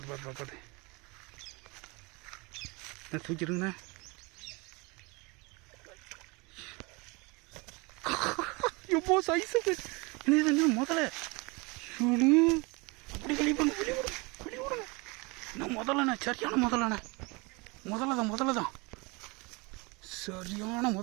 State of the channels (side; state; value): left; quieter; 27.3 dB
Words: தூக்கிடுங்கண்ணே எப்போ சைஸு என்ன முதல்ல அப்படி வெளியே விடுங்க நான் முதல்லண்ணே சரியான முதல்ல தான் சரியான